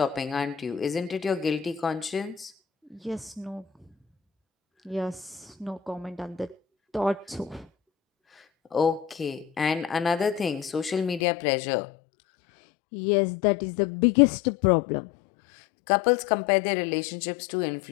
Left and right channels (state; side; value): drops out; right; at 11.2 s